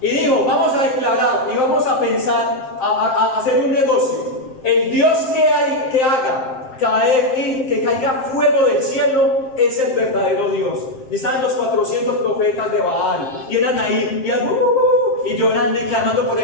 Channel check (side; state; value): right; late; 7.6 ms